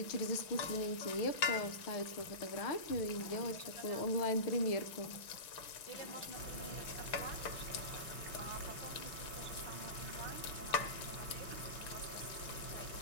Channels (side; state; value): right; late; 6.1 ms